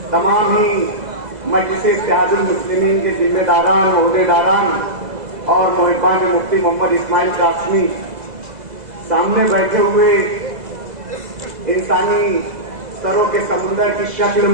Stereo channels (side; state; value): left; late; 2.0 ms